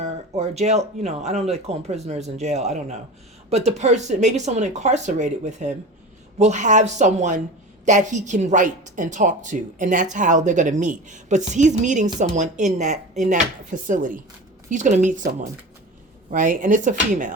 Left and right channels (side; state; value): both; normal; correlation 0.32